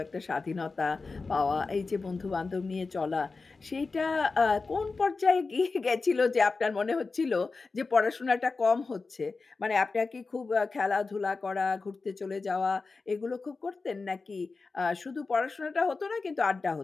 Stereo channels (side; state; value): right; quieter; 4.1 dB